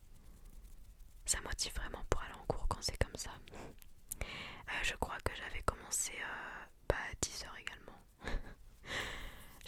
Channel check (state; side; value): identical; both; correlation 1.00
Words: Ça motive vraiment pour aller en cours quand c'est comme ça. Je crois que j'avais commencé à 10h également.